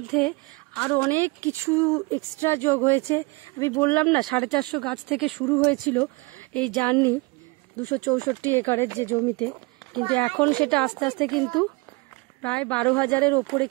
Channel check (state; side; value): quieter; left; 26.7 dB